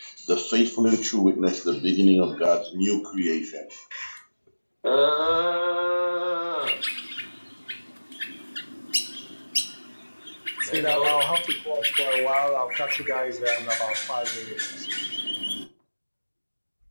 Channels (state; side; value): inverted; both; correlation -1.00